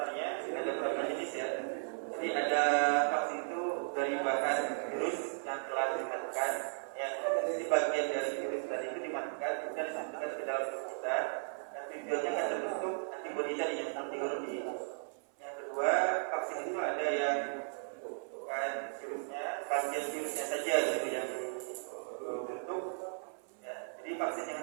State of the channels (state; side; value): silent; left; 54 dB below the other